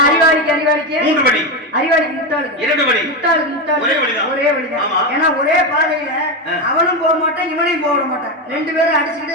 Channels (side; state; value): both; normal; correlation 0.13